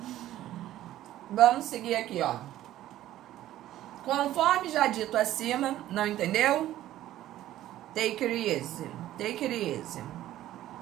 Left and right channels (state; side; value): quieter; left; 13.7 dB